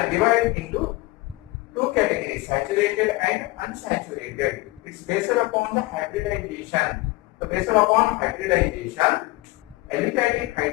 into two categories, saturated and unsaturated. It's based upon the hybridization. So based upon hybridization, aliphatic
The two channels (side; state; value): right; quieter; 20.8 dB